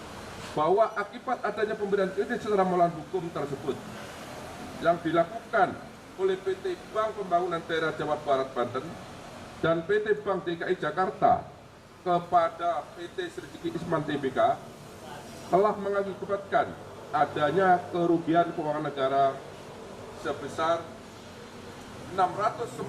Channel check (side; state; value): both; identical; correlation 1.00